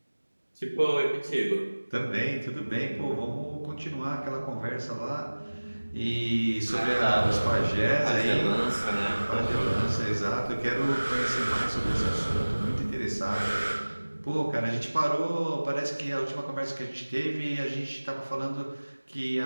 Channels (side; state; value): both; inverted; correlation -1.00